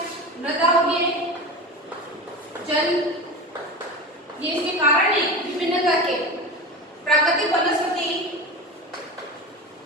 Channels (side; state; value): both; normal; correlation 0.27